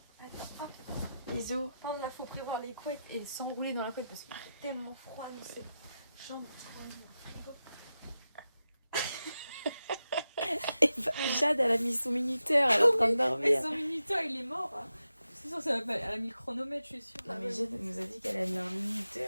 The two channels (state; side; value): inverted; both; correlation -0.91